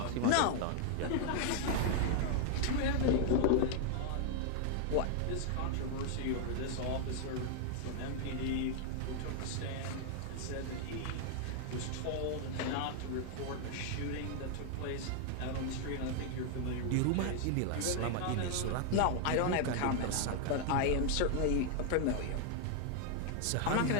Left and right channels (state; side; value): different; both; correlation 0.00